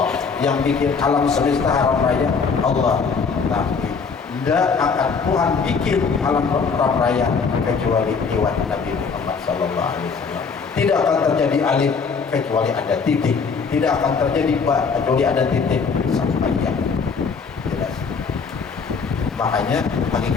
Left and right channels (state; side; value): quieter; right; 5.3 dB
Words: yang bikin alam semesta haram raya Allah. Tapi tidak akan Tuhan bikin alam haram raya kecuali lewat Nabi Muhammad SAW. Tidak akan terjadi alif kecuali ada titik. Tidak akan terjadi ba kecuali ada titik sampai ya. Jelas. Makanya